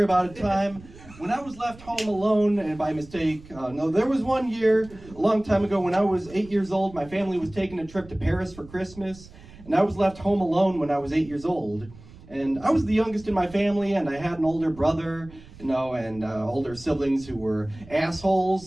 about a time when I was left home alone, and by mistake. No, there was one year, a long time ago, when I was 8 years old. My family was taking a trip to Paris for Christmas, and I was left home alone when I was 8 years old. And I was the youngest in my family, and I had an older brother, and older siblings who were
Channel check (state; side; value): noise; right; rumble, 20 dB below the sound